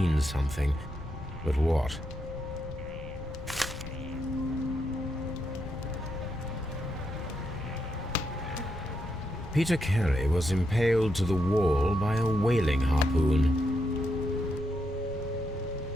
something, but what? Peter Carey was impaled to the wall by a whaling harpoon.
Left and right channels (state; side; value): noise; right; rumble, 14 dB below the sound